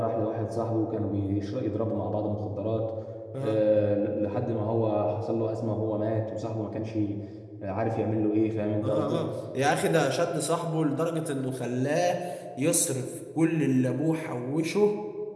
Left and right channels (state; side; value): identical; both; correlation 1.00